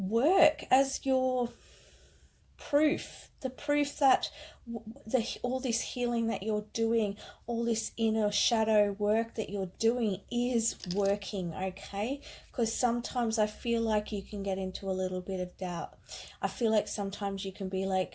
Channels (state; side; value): identical; both; correlation 1.00